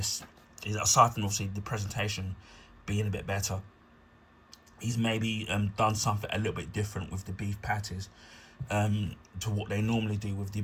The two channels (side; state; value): both; identical; correlation 1.00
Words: is, aside from obviously the presentation being a bit better, he's maybe done something a little bit different with the beef patties to what they normally do with the